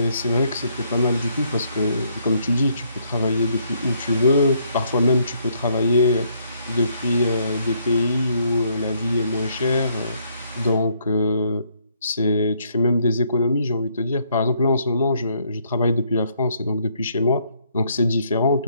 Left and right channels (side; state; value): both; inverted; correlation -0.70